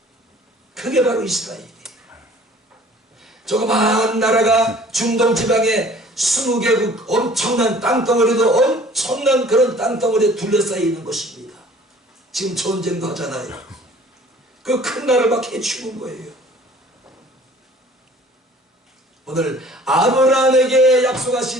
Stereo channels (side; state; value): both; normal; correlation 0.51